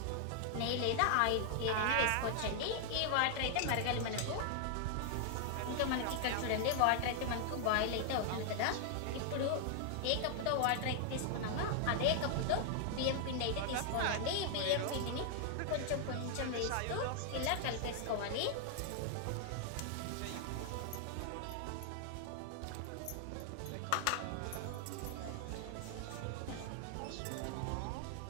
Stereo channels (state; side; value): different; both; correlation 0.00